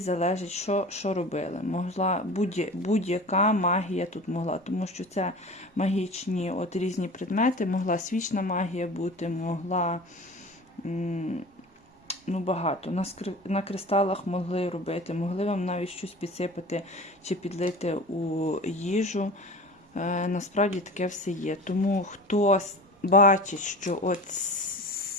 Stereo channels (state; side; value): normal; both; correlation 0.36